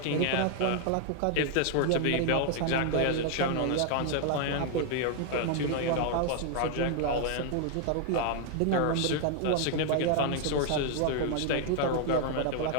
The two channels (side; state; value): both; different; correlation 0.00